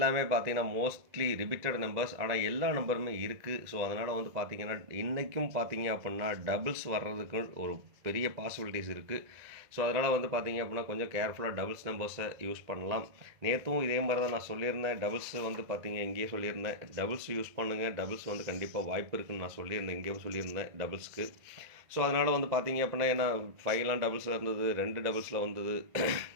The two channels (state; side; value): late; left; 1.9 ms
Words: பார்த்தீங்கன்னா மோஸ்ட்லி ரிப்பீட்டட் நம்பர்ஸ். ஆனால் எல்லா நம்பருமே இருக்குது. ஸோ அதனால் வந்து பார்த்திங்கன்னா இன்றைக்கும் பார்த்தீங்க அப்படின்னா டபுள்ஸ் வர்றதுக்கு ஒரு பெரிய பாசிபிலிட்டிஸ் இருக்குது. ஸோ அதனால் வந்து பார்த்திங்க அப்படின்னா கொஞ்சம் கேர்ஃபுல்லாக டபுள்ஸ் நம்பர்ஸை யூஸ் பண்ணலாம். நேற்றும் இதே மாதிரி தான் நான் சொல்லியிருந்தேன். டபுள்ஸ் வந்து பார்த்திங்க இங்கேயே சொல்லியிருந்தேன், டபுள்ஸ் யூஸ் பண்ணுங்கள், டபுள்ஸ் வந்து கண்டிப்பாக வாய்ப்பு இருக்குதுன்னு நான் சொல்லியிருந்தேன், இங்கேயும் சொல்லியிருந்தேன் டபுள்ஸ்க்கு. ஸோ அதனால் வந்து பார்த்திங்க அப்படின்னா ஏன்னா 5லாம் டபுள்ஸில் இருந்தது, 2 டபுள்ஸில் வந்தது,